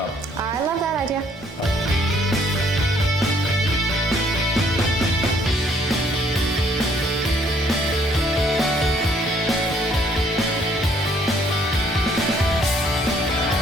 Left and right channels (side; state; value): both; normal; correlation 0.64